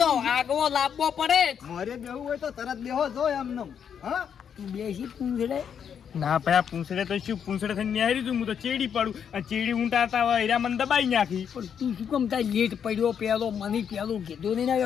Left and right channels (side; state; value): right; quieter; 7.9 dB